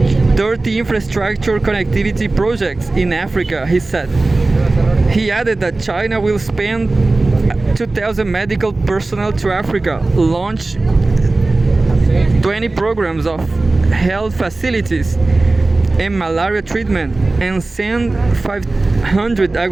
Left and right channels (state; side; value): quieter; left; 3.2 dB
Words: 30 infrastructure connectivity projects in Africa, he said. He added that China will spend 2,000 medical personnel to Africa, launch 20 programs of health facilities and malaria treatment, and send 500